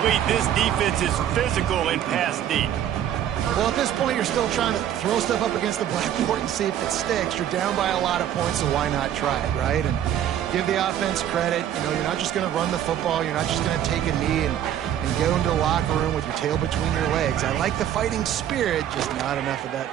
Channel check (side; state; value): left; quieter; 10.7 dB